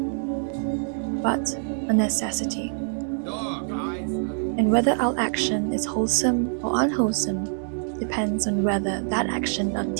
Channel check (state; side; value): silent; left; digital silence